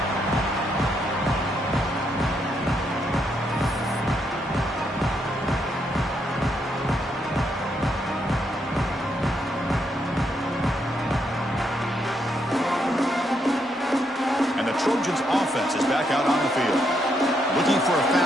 And the Trojans' offense is back out on the field. Looking for a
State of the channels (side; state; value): both; normal; correlation 0.77